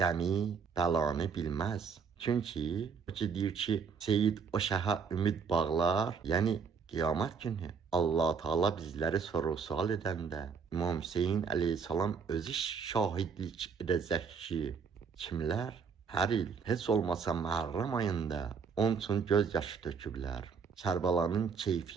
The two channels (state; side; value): quieter; left; 5.9 dB